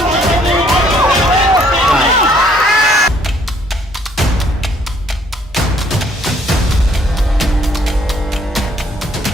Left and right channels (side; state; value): both; normal; correlation 0.64